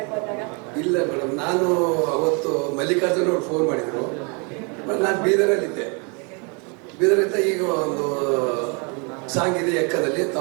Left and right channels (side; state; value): left; quieter; 34.3 dB